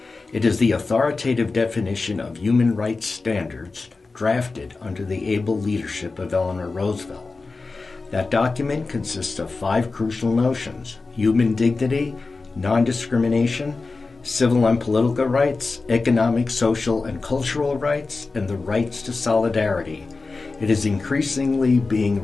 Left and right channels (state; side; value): quieter; right; 3.9 dB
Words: It is the authoritative definition of human rights standards drafted under the able leadership of Eleanor Roosevelt. That document consists of 5 crucial notions: human dignity, non-discrimination, civil and political rights, economic, social, and cultural rights, and the rights to solidarity. It is increasingly being